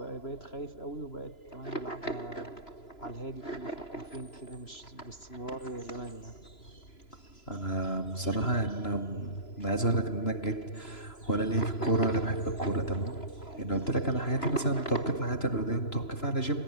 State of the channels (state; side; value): late; right; 3.0 ms